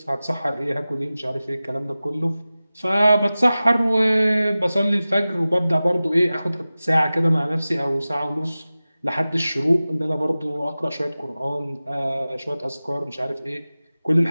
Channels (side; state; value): both; inverted; correlation -0.96